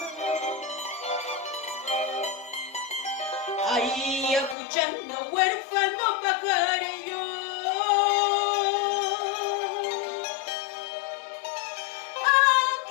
Ahí escuchando huérfano pajarillo,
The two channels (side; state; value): right; drops out; at 4.5 s